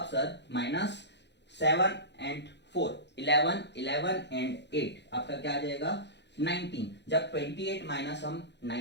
सर माइनस 7 एंड 4, 11, 11 एंड 8 आपका क्या आ जाएगा, 19। जब 28 माइनस हम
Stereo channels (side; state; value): right; late; 0.50 ms